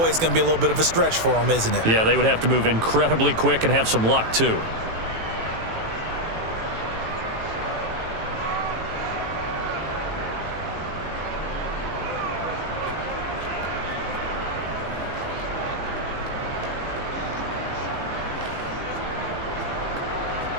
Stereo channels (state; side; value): late; left; 18 ms